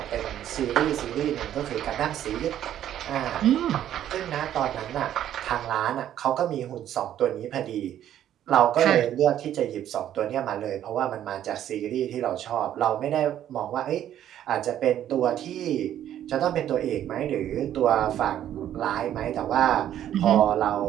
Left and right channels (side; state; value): left; quieter; 11.2 dB